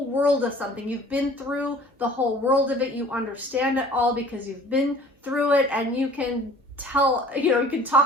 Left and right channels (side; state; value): both; normal; correlation 0.49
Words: world of something. You've been through the whole world of it. You understand it all because you've been through it, and you can tell, you know, you can